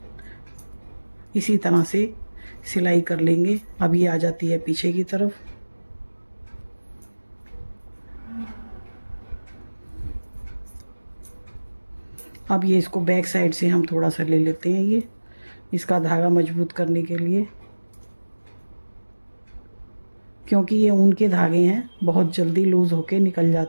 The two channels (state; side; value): inverted; both; correlation -1.00